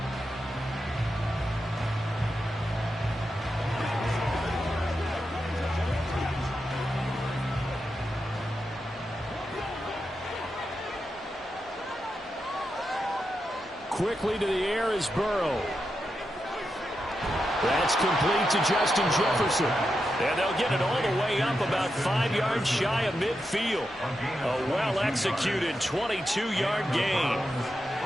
Quickly to the air is Burrow. That's complete to Justin Jefferson. And they'll get it all the way up about 5 yards shy of midfield. A well-executed 22-yard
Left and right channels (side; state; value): both; normal; correlation 0.87